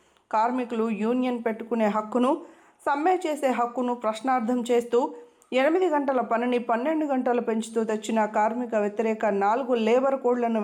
కార్మికులు యూనియన్ పెట్టుకునే హక్కును, సమ్మె చేసే హక్కును ప్రశ్నార్థం చేస్తూ 8 గంటల పనిని 12 గంటలు పెంచుతూ తెచ్చిన కార్మిక వ్యతిరేక 4 లేబర్ కోడ్లను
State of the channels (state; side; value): identical; both; correlation 1.00